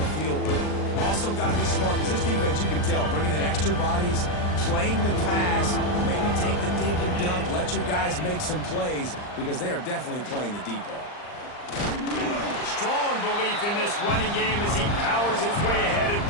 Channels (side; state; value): right; late; 39 ms